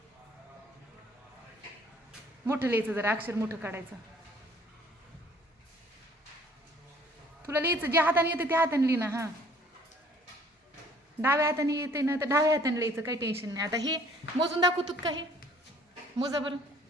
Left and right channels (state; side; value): normal; both; correlation 0.57